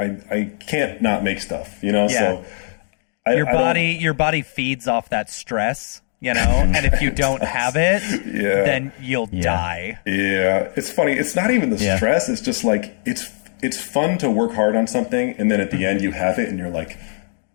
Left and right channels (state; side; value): silent; right; 57 dB below the other